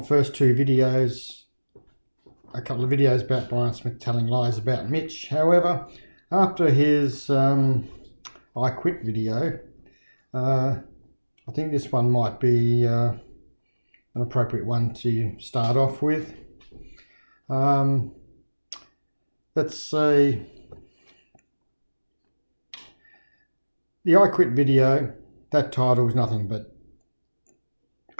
first two videos, a couple of videos about Brian Smith telling lies about Mitch. However, after his I Quit video, I think this one might be an appropriate one to start off with. Let's say the I Quit video, that title is nothing but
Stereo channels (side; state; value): both; inverted; correlation -1.00